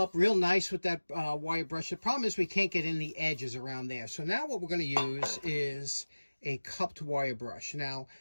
real nice with that wire brush. The problem is we can't get in the edges around there. So now what we're going to use is a cupped wire brush. Now,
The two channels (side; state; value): both; inverted; correlation -1.00